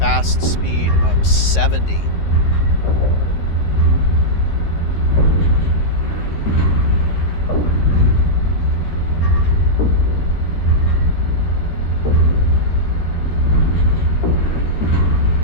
speed of 70.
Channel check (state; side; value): late; right; 13 ms